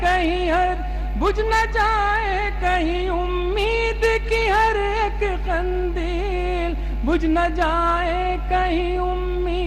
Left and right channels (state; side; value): identical; both; correlation 1.00